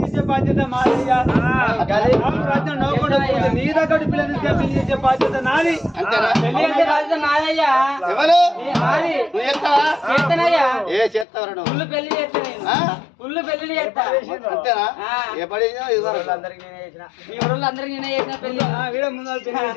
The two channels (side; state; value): right; drops out; at 11.2 s